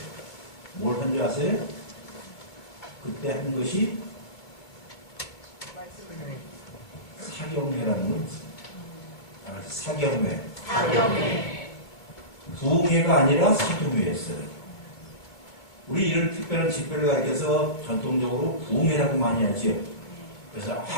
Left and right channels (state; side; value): late; right; 2.4 ms